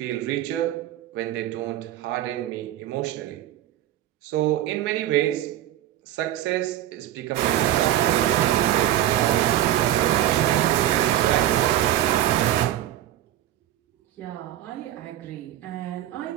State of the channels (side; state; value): left; quieter; 13.1 dB